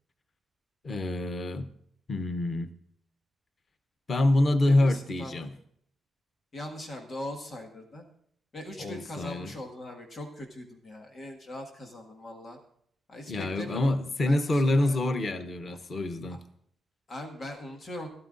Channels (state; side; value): normal; both; correlation 0.92